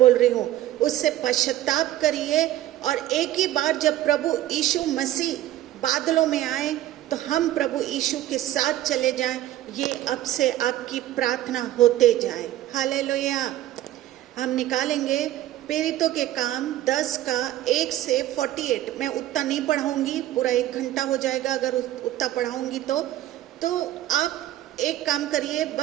रही हूँ उससे पश्चाताप करिए और एक ही बार जब प्रभु यीशु मसीह बादलों में आए तो हम प्रभु यीशु के साथ चले जाएं। ये अब से आपकी प्रार्थना होते जाए। हालेलुया। हम निकालेंगे प्रेरितों के काम 10 का 1 से 48। मैं उतना नहीं पढ़ाऊंगी, पूरा 1 घंटा हो जाएगा अगर उतना पढ़ाऊंगी तो आप एक काम करिए,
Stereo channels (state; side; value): quieter; left; 13.8 dB